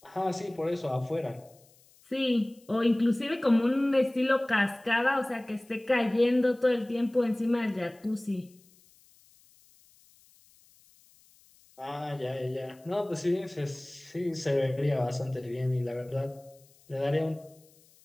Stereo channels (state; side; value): noise; left; hiss, 29 dB below the sound